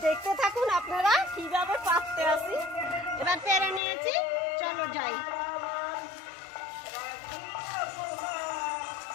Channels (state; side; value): drops out; right; at 3.8 s